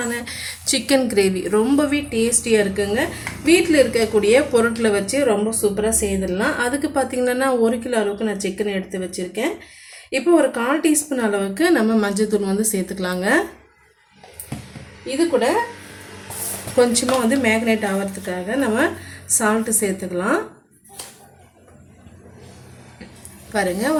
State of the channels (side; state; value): both; identical; correlation 1.00